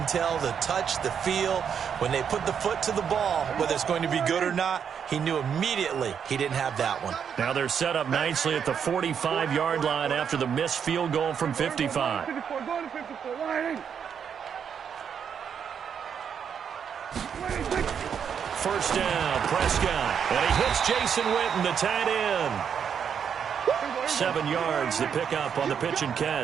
tell the touch, the feel. When they put the foot to the ball, whether it's going to be good or not, he knew immediately he didn't have that one. Now they're set up nicely at the 45-yard line after the missed field goal from 55. First down, Prescott. And he hits Jason Witten, the tight end. 7 yards, the pickup on the pitch and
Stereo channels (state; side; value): quieter; left; 7.6 dB